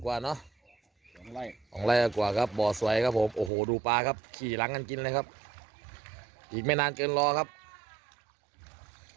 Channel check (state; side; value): drops out; left; at 3.5 s